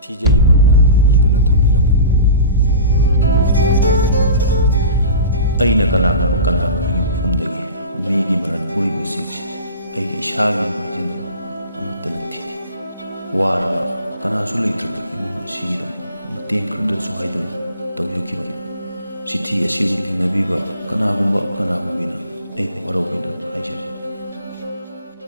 TJ Murna iduna thambiraman aina kanana mafamdagi migi maran puribu singsi aigi ishagi majina amutana thi wara kanasu leitraki imum sigida mateng khurda suhaidam tawyokiba sithi asibu thingnabiba kanagumba kanagumina ai warobina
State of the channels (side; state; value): both; inverted; correlation -0.38